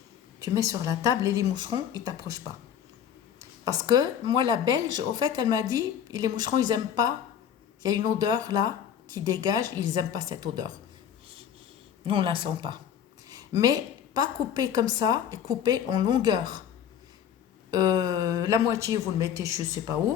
Tu mets sur la table et les moucherons, ils ne t'approchent pas. Parce que moi, la Belge, au fait, elle m'a dit, les moucherons, ils n'aiment pas. Il y a une odeur là qui dégage, ils n'aiment pas cette odeur. Nous, on ne la sent pas. Mais pas coupé comme ça, et coupé en longueur. La moitié, vous le mettez je ne sais pas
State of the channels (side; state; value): right; quieter; 9.0 dB